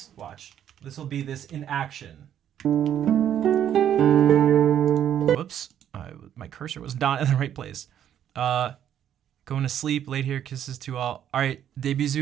watch. This will be this in action. Whoops. My cursor was not in the right place. Going to sleep, late here, kisses to all. All right, des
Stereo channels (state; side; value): quieter; left; 10.1 dB